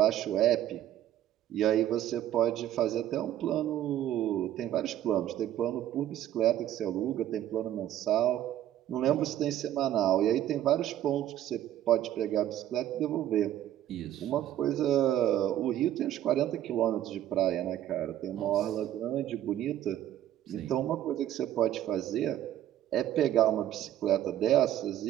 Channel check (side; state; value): left; quieter; 12.1 dB